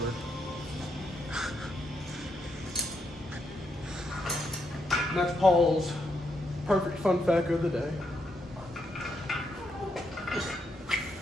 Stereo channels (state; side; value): normal; both; correlation 0.79